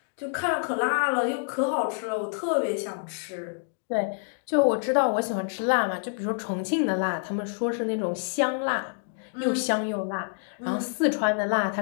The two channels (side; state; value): right; silent; digital silence